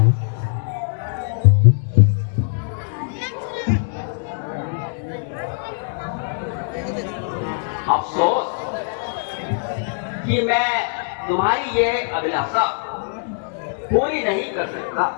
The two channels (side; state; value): right; silent; digital silence